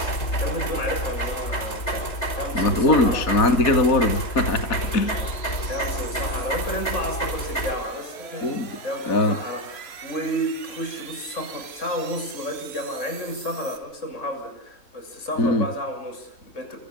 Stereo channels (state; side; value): late; right; 3.3 ms